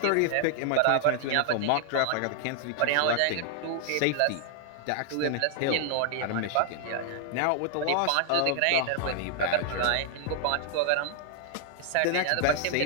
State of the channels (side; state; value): both; different; correlation 0.00